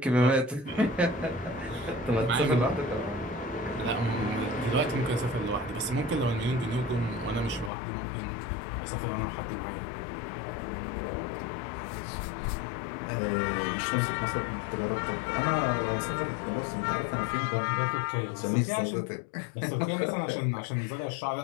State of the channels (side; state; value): right; drops out; at 7.7 s